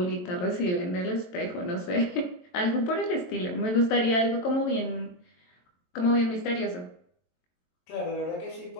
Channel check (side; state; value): right; late; 22 ms